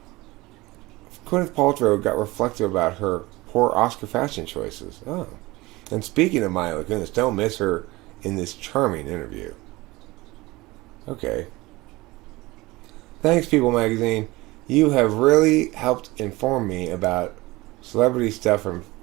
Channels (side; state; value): left; quieter; 20.9 dB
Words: Gwyneth Paltrow got reflective about her poor Oscar fashion choices. Oh. And speaking of Mila Kunis, don't miss her in this charming interview. Okay. Thanks, People Magazine. You have really helped inform me about celebrity stuff from